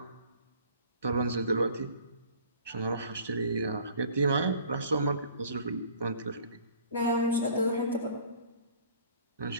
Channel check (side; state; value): both; inverted; correlation -0.50